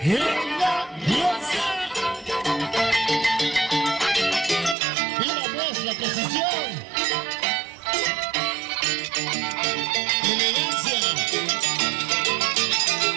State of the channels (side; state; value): left; drops out; at 4.8 s